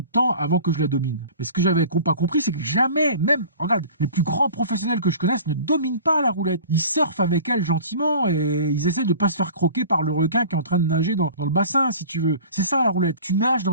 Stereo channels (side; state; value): both; inverted; correlation -0.41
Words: temps avant que je la domine. Mais ce que j'avais pas compris, c'est que jamais, même, regarde, les plus grands professionnels que je connaisse ne dominent pas la roulette. Ils surfent avec elle gentiment et ils essaient de pas se faire croquer par le requin qui est en train de nager dans le bassin, si tu veux. C'est ça la roulette. Tu nages